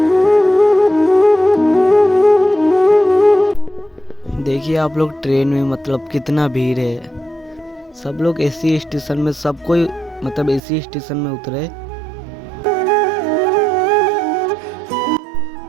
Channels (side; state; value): left; drops out; at 10.6 s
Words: देखिए आप लोग ट्रेन में मतलब कितना भीड़ है। सब लोग एसी स्टेशन में, सब कोई मतलब एसी स्टेशन में उतरे।